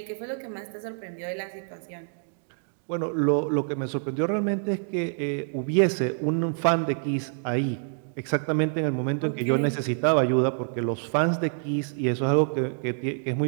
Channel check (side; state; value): left; silent; 60 dB below the other